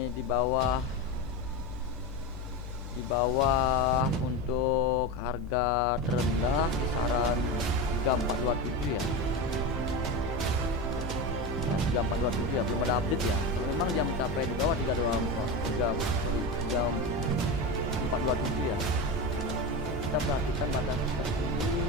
di bawah untuk harga terendah kisaran 3427 ya. 3427 ya, belum ada update ya. Kalau memang dia mencapai di bawah 3427 ya, kita perhatikan batas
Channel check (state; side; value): normal; both; correlation 0.20